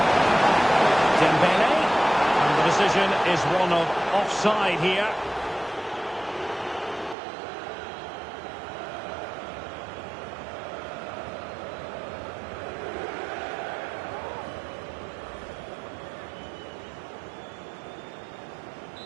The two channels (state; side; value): drops out; left; at 7.2 s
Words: Dembele. And the decision is one of offside here.